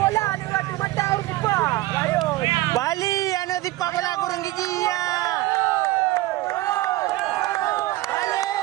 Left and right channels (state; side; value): quieter; left; 17.6 dB